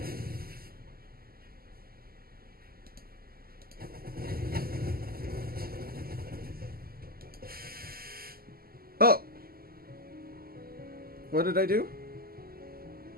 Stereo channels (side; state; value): left; late; 0.43 ms